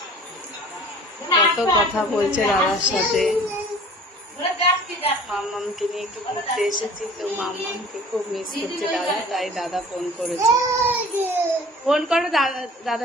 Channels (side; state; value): both; normal; correlation 0.46